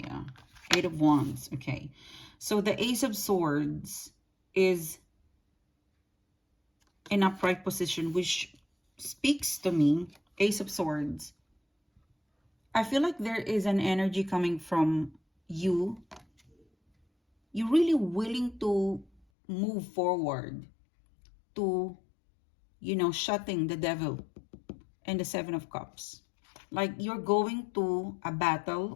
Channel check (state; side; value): drops out; right; at 19.2 s